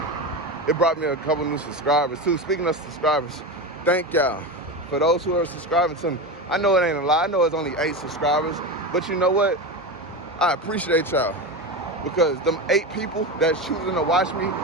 it brought me a couple new subscribers too. Speaking of subscribers, thank y'all for those who are subscribing to me. I know it ain't a lot. I know it's only 8 subscribers, but you know what? I appreciate y'all, because them 8 people that's choosing to watch me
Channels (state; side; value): normal; both; correlation 0.21